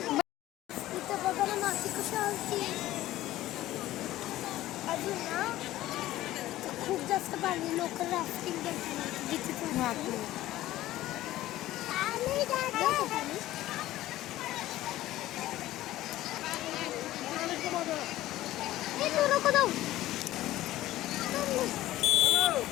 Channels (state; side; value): quieter; right; 15.3 dB